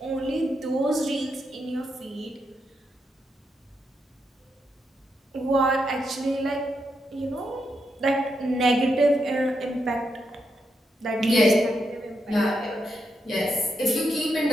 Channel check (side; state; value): both; normal; correlation 0.82